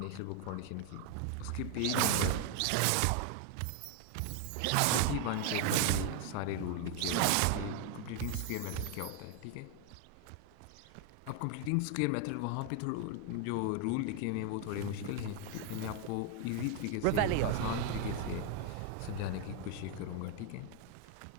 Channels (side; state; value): both; different; correlation 0.01